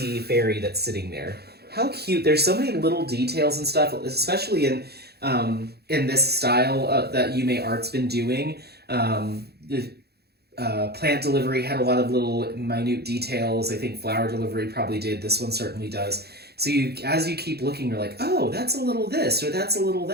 fairy that's sitting there. How cute. There's so many little details and stuff, especially in this style that Yuumei Art's been doing. The plant delivery had a lot of little minute details. I think flower delivery probably did. This one certainly does. So as you keep looking, you're like, oh, that's a little this or that's a little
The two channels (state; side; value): late; left; 0.47 ms